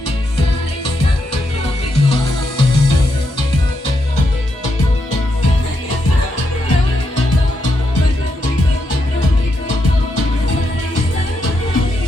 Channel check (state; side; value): normal; both; correlation 0.81